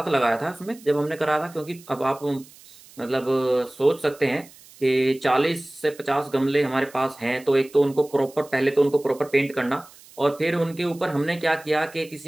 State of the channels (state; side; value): noise; right; hiss, 23 dB below the sound